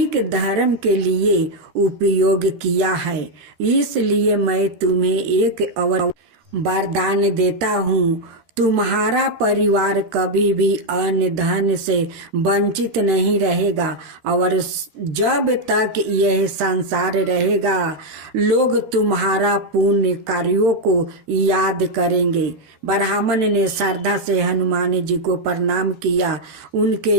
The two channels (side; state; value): left; late; 13 ms